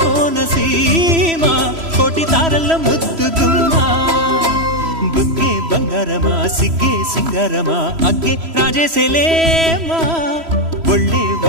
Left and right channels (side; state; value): left; late; 3.0 ms